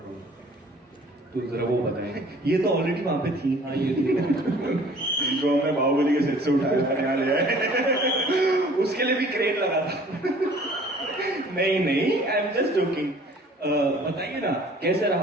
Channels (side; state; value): both; normal; correlation 0.52